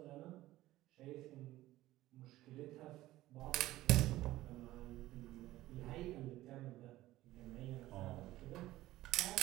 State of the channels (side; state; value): left; quieter; 16.1 dB